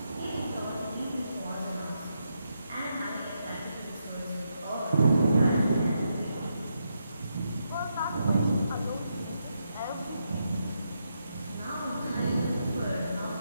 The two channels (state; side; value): inverted; both; correlation -0.82